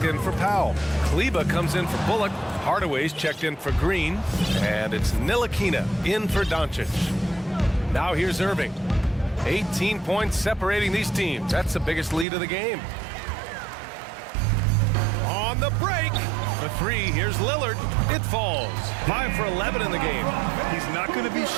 in for Powell. Kleba comes in for Bullock. Hardaway's checked in for Green. And it's Ntilikina in for Doncic. Now here's Irving. 18 points separating these teams. That's the biggest lead of the game. On the break. The 3, here's Lillard. It falls. 5 for 11 in the game. He's not going to be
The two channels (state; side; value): drops out; left; at 12.2 s